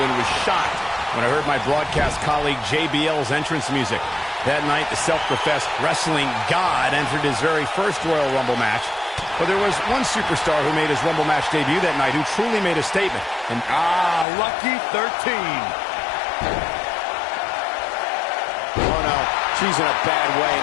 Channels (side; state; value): right; drops out; at 14.2 s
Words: and was shocked when I heard my broadcast colleague JBL's entrance music. That night, the self-professed wrestling god entered his very first Royal Rumble match. But there was one superstar who made his Rumble match debut that night who truly made a statement. And lucky 13. oh no, she's in a bad way